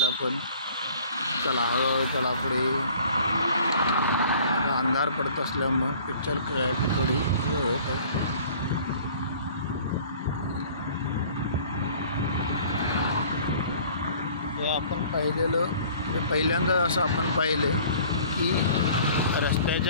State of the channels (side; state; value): both; inverted; correlation -0.50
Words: पण. चला, हळूहळू चला पुढे. अंधार पडत असल्यामुळं पिक्चर क्लॅरिटी थोडी हे होत आहे. हे आपण पाहिलेलं, म्हणजे पहिल्यांदा असं आपण पाहिलं की